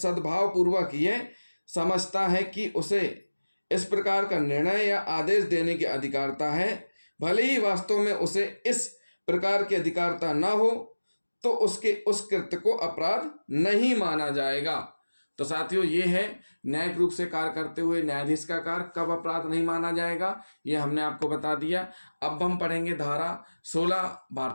पूर्वक यह समझता है कि उसे इस प्रकार का निर्णय या आदेश देने की अधिकारिता है, भले ही वास्तव में उसे इस प्रकार की अधिकारिता न हो, तो उसके उस कृत्य को अपराध नहीं माना जाएगा। तो साथियों, ये है न्यायिक रूप से कार्य करते हुए न्यायाधीश का कार्य कब अपराध नहीं माना जाएगा, ये हमने आपको बता दिया। अब हम पढ़ेंगे धारा 16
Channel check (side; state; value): both; inverted; correlation -1.00